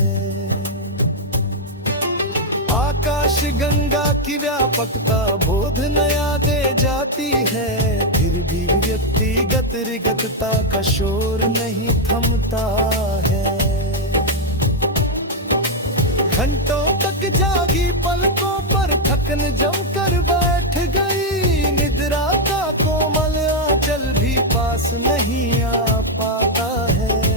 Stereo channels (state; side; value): normal; both; correlation 0.00